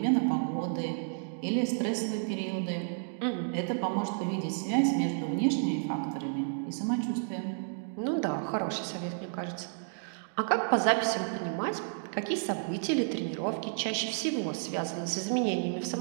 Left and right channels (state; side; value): silent; left; digital silence